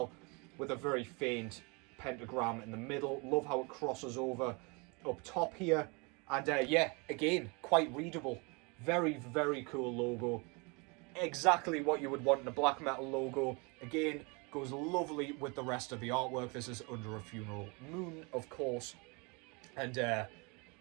with a very faint pentagram in the middle. Love how it crosses over up top here And yeah, again, quite readable. Very, very cool logo. Exactly what you would want in a black metal logo. Again, goes lovely with the rest of the artwork. This is Under a Funeral Moon, of course. And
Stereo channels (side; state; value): left; quieter; 30.1 dB